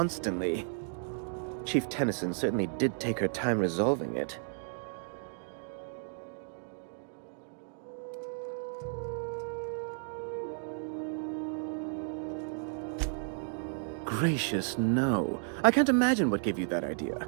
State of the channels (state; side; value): silent; left; digital silence